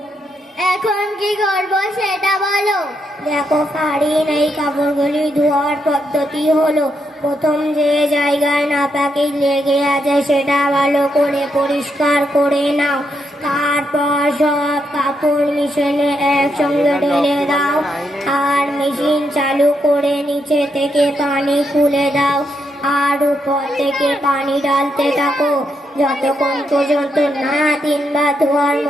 এখন কি করবো সেটা বলো। দেখো ফারিন, এই কাপড়গুলি ধোয়ার পদ্ধতি হলো, প্রথম যে জায়গায় নাপাকি লেগে আছে সেটা ভালো করে পরিষ্কার করে নাও। তারপর সব কাপড় মেশিনে একসঙ্গে ঢেলে দাও আর মেশিন চালু করে নিচে থেকে পানি খুলে দাও আর উপর থেকে পানি ঢালতে থাকো যতক্ষণ পর্যন্ত না 3 বার ধোয়ার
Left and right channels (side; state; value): both; normal; correlation 0.80